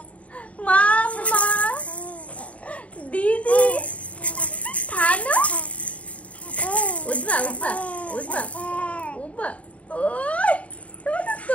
মামা দিদি থানো। উঠবা উঠবা উঠবা উঠবা। ওই তোমার তো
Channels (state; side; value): late; right; 0.066 ms